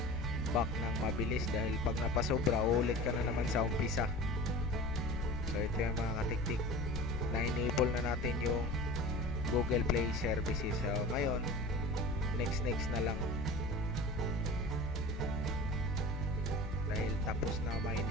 ng mabilis, dahil pag napasobra, ulit ka na naman sa umpisa. So ito yung mga katiktik, na-enable na natin yung Google Play Services. So ngayon, next na lang, dahil tapos na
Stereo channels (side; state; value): both; normal; correlation 0.37